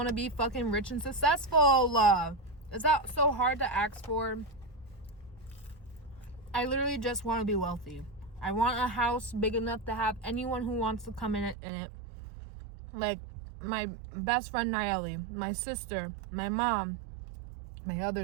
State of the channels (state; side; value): drops out; left; at 11.6 s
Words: to be fucking rich and successful. Is that so hard to ask for? I literally just want to be wealthy. I want a house big enough to have anyone who wants to come in it. Like my best friend Nayeli, my sister, my mom, my